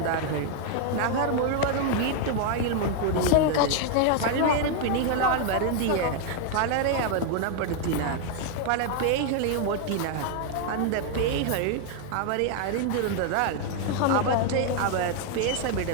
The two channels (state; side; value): different; both; correlation 0.00